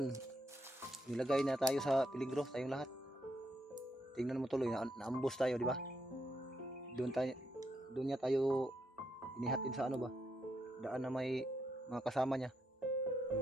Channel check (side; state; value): both; normal; correlation 0.79